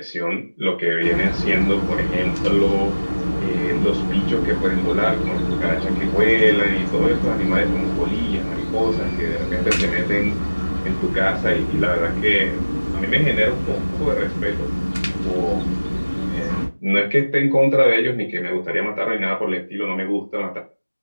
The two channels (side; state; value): both; inverted; correlation -1.00